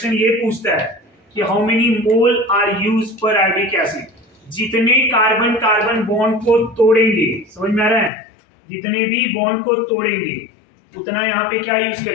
ये पूछता है कि how many mole are use periodic acid? जितने कार्बन कार्बन बॉन्ड को तोड़ेंगे, समझ में आ रहा है? जितने भी बॉन्ड को तोड़ेंगे उतना यहाँ पे क्या यूज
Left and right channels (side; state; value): right; drops out; at 8.1 s